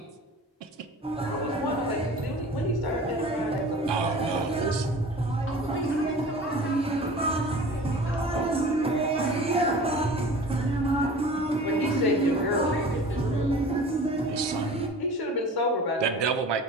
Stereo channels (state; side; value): normal; both; correlation 0.41